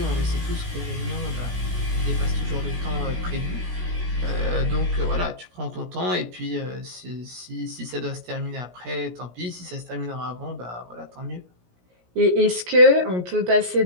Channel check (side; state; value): left; late; 17 ms